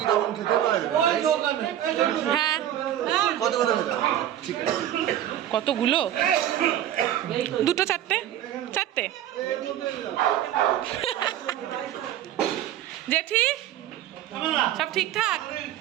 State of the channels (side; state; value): left; quieter; 11.8 dB